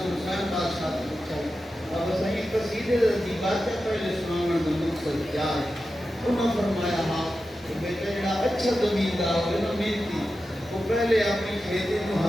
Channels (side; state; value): both; normal; correlation 0.92